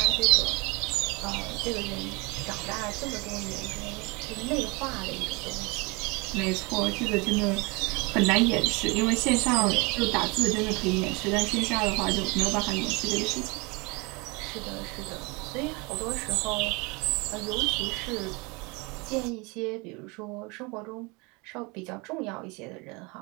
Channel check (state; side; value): quieter; left; 27.7 dB